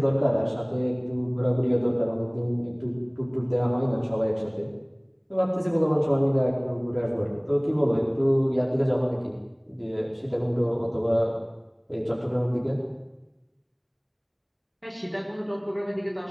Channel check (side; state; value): both; identical; correlation 1.00